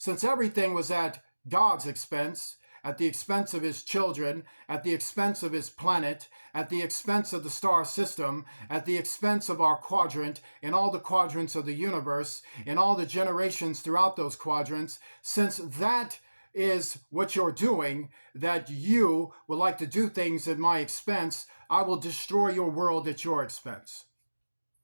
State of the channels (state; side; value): inverted; both; correlation -1.00